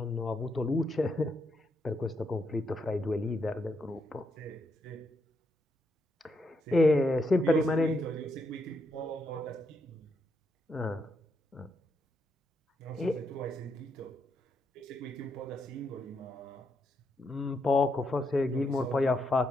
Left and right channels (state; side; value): normal; both; correlation 0.79